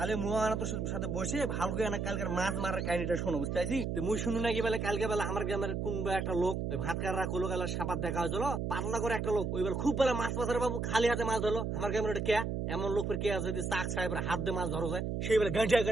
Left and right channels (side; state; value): right; noise; hum, 1 dB below the sound